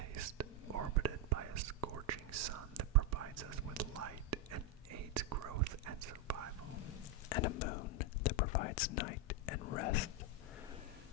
orbited by a scorching sun that provides us with light and aids growth and survival, and a moon that provides night and rest.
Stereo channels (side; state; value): both; normal; correlation 0.04